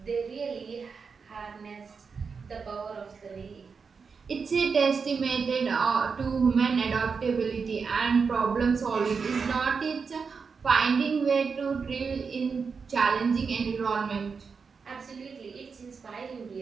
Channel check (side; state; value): left; quieter; 5.4 dB